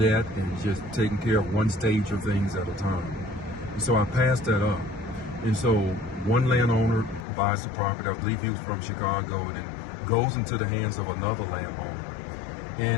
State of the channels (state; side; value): drops out; right; at 7.2 s